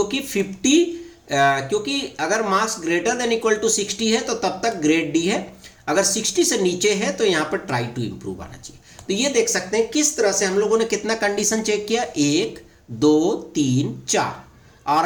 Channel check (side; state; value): both; identical; correlation 1.00